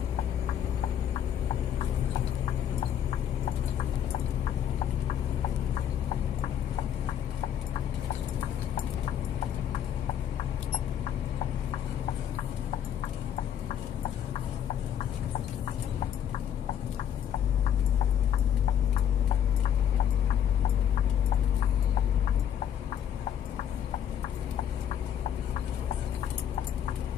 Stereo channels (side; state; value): right; quieter; 9.5 dB